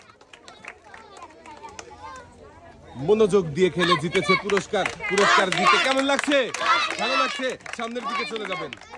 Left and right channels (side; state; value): both; identical; correlation 1.00